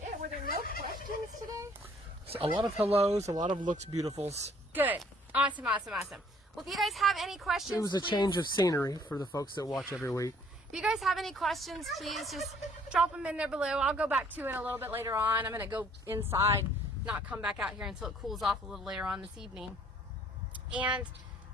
Were there no questions today? So a lot of hellos, a lot of looks beautifuls. Good. Awesome, awesome, awesome. Well, if you guys have any questions, it was a change of scenery for the folks that watch every week. If you guys have any questions, please just drop them in there below. I'll go back to it a little bit later on. I'm going to go inside, not come back out here until it cools off a little later on this evening. And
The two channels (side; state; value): both; normal; correlation 0.60